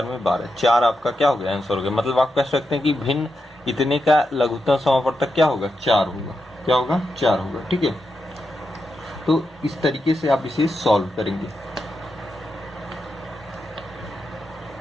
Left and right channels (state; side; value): normal; both; correlation 0.86